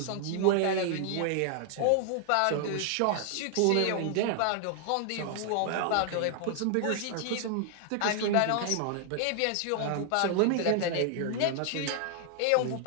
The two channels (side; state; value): both; different; correlation 0.00